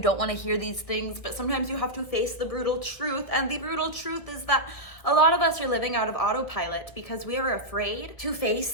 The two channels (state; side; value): late; right; 1.7 ms